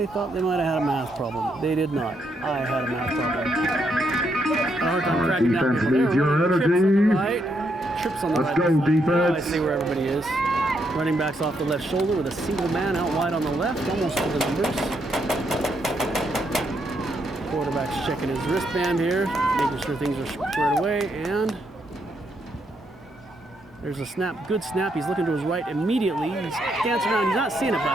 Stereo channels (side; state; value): both; normal; correlation 0.77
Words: thought they might have had a math problem. They did not. I had a math problem. Had a hard time tracking down people. They were running trips on the right. Trips on the right. Let's go, defense. Now I see where everybody is. Running backs off the left shoulder with a single man out wide on the left, almost to the numbers. Quarterback's checking his wristband here, making sure things are squared away, and there's a snap, good snap. He's looking to his right immediately. He's dancing around. He's not seeing it, but